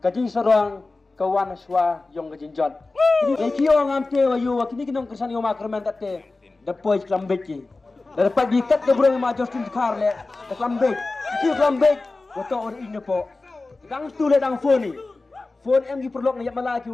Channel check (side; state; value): right; quieter; 3.4 dB